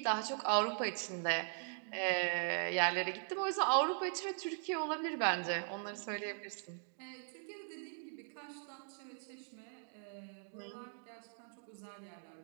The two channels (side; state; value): left; silent; digital silence